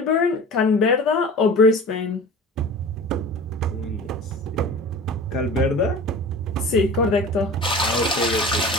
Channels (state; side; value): normal; both; correlation 0.37